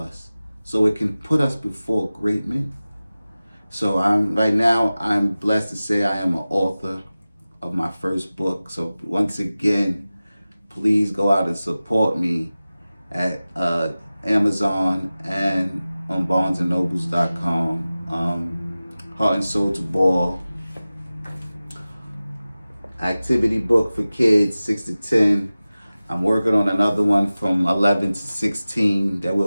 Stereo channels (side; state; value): both; inverted; correlation -0.96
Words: so it can put us before great men. So right now, I'm blessed to say I am an author of my first book. So once again, please go out and support me at Amazon and on barnesandnobles.com. Heart and Soul to Ball. Activity book for kids 6 to 10. I'm working on another one from 11 to 16 that